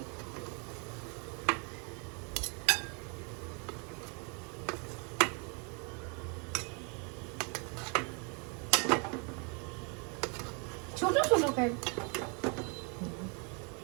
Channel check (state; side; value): quieter; left; 35.2 dB